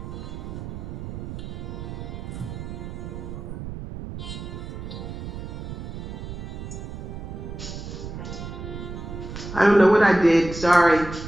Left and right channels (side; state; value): right; noise; rumble, 8 dB below the sound